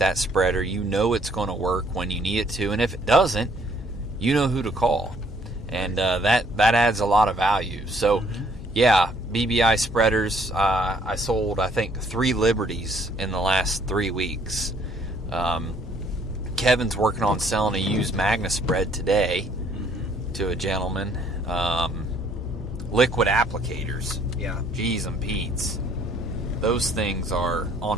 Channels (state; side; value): normal; both; correlation 0.63